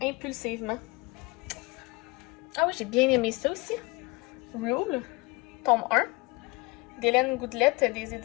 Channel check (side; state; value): right; quieter; 25.1 dB